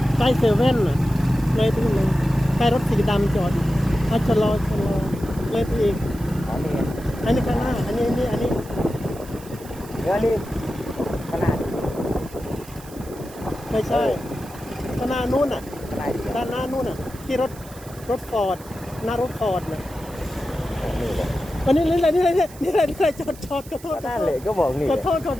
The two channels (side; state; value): right; noise; hiss, 20 dB below the sound